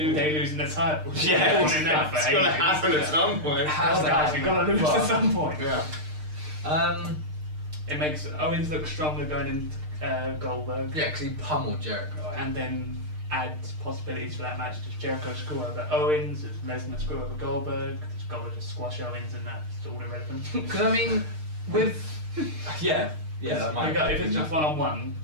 Day losing the title. Yeah, We're calling that for it's gonna ages. happen at some point. How's that Guys, we've got to lose happening? at some point. Yeah. It makes Owens look stronger going into Goldberg. Yeah, because he pummeled Jericho. And then add possibilities for that match. Does Jericho screw over Owens? Does Lesnar screw over Goldberg? Does Goldberg just squash Owens and that's all irrelevant? Because I mean, with that might. If it's just one-on-one,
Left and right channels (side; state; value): left; late; 6.6 ms